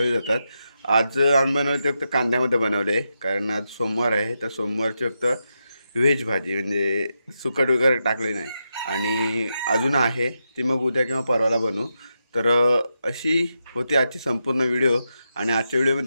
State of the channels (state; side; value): inverted; both; correlation -0.86